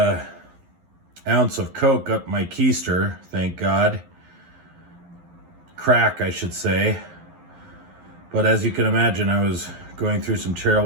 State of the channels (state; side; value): late; left; 11 ms